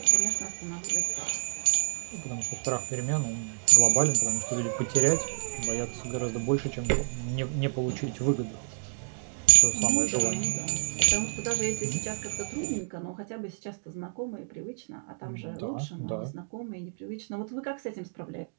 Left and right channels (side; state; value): left; silent; digital silence